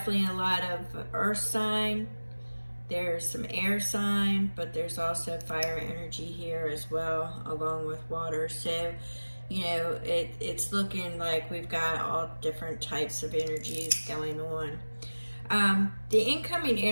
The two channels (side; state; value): both; inverted; correlation -1.00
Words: a lot of earth sign. There's some air sign, but there's also fire energy here as well, along with water. So, it's looking like we've got all different types of energies going on. The incoming